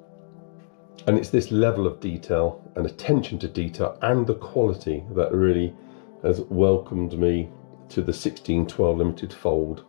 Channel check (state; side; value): silent; right; digital silence